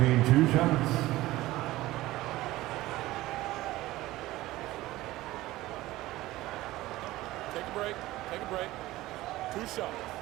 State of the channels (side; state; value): left; quieter; 17.3 dB